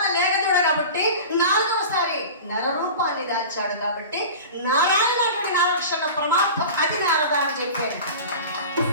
లేగదూడ కాబట్టి, 4వసారి నరరూపాన్ని దాల్చాడు కాబట్టి నారాయణుడి నారక్షణ ప్రమార్థం అది నారద అని చెప్పారు.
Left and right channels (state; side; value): inverted; both; correlation -0.34